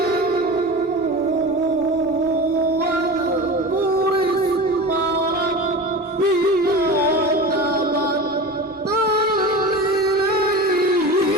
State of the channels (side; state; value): both; normal; correlation 0.30